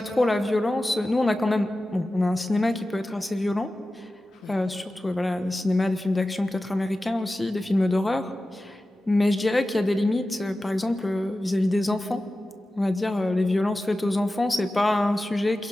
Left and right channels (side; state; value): both; normal; correlation 0.94